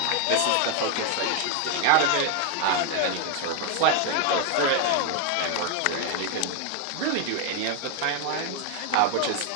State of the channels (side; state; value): both; different; correlation 0.01